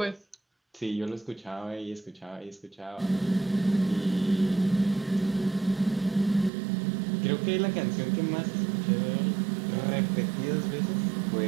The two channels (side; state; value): left; drops out; at 6.5 s